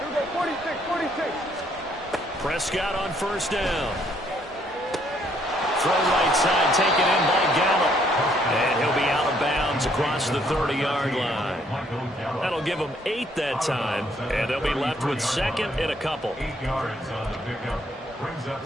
we go, 46. Prescott on 1st down. Throw right side, taken in by Gallup. And he'll be out of bounds across the 30-yard line. That'll give them 8 that time, and they'll be left with 2nd and a couple. 8 yards on the pickup. Brings up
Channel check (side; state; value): both; normal; correlation 0.67